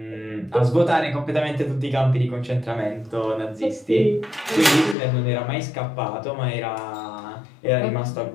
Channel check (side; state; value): right; drops out; at 5.0 s